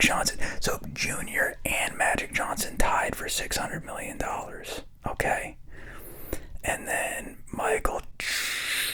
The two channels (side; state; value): both; identical; correlation 1.00